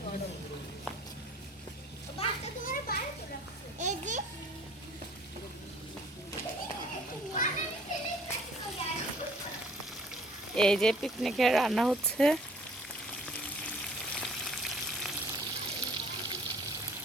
করো। বাচ্চা তোমার বাইরে করে রাখছো। এই যে এই যে পিকনিকের রান্না হচ্ছে।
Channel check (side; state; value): both; normal; correlation 0.55